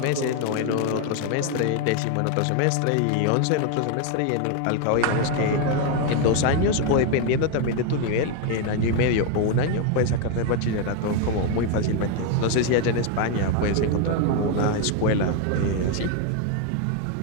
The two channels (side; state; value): both; different; correlation 0.01